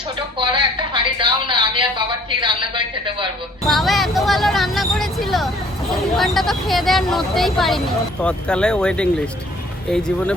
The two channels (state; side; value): normal; both; correlation 0.57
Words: ছোট কড়া একটা হাঁড়ি দাও না, আমি আর বাবা ঠিক রান্না করে খেতে পারবো। বাবা এত ভালো রান্না করেছিল, দু ঘন্টা তো খেয়ে দেওয়ার নড়তেই পারিনি। তৎকালে ওয়েটিং লিস্ট, এই জীবনে